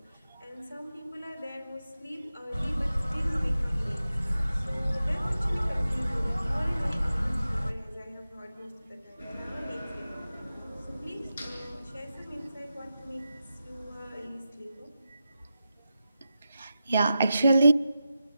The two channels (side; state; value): both; inverted; correlation -0.91